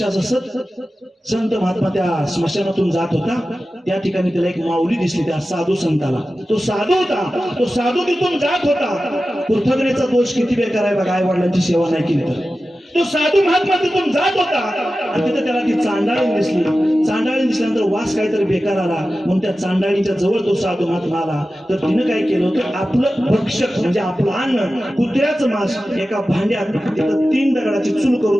असं संत महात्मा त्या स्मशानातून जात होता. त्या ठिकाणी त्याला एक माऊली दिसली, त्या साधू संताला. तो साधू होता, तो साधू तिथून जात होता. कृतज्ञतेचा दोष किती बेकार आहे बघा, आई वडिलांची सेवा नाही केली तर. तो साधू महात्मा तिथून जात होता आणि तिथे त्याला ती चांडाळी दिसली. चांडाळी दिसल्यानंतर वास काहीतरी बेकार आला, म्हणून त्या चांडाळीच्या जवळ तो साधू महात्मा आला. तर तिनं काय केलं होतं, आपलं भक्षक म्हणजे आपलं अन्न, कुत्र्याचं मांस एका भांड्यात तिथं 3 दगडाची चूल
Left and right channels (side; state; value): both; normal; correlation 0.94